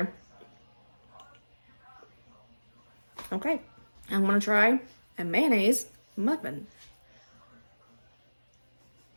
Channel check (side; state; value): both; inverted; correlation -1.00